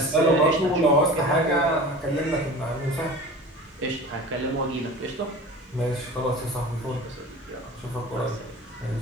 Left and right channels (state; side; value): normal; both; correlation 0.37